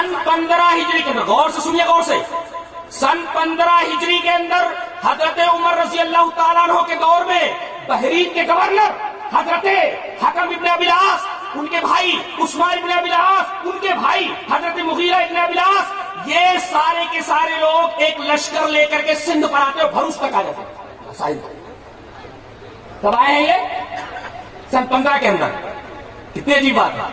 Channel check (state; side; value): identical; both; correlation 1.00